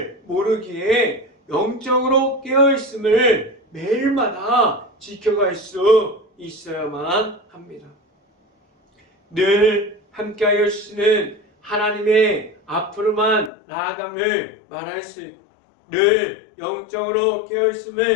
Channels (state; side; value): drops out; right; at 13.5 s